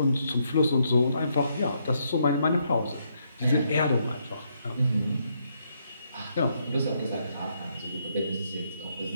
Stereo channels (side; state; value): both; inverted; correlation -0.76